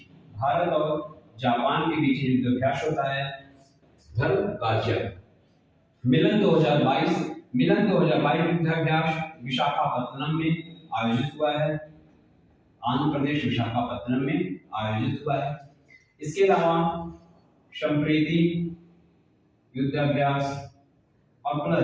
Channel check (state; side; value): identical; both; correlation 1.00